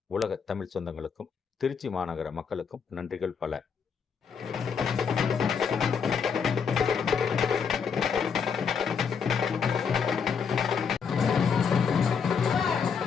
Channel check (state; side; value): quieter; right; 6.4 dB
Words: உலக தமிழ் சொந்தங்களுக்கும் திருச்சி மாநகர மக்களுக்கும் நன்றிகள் பல.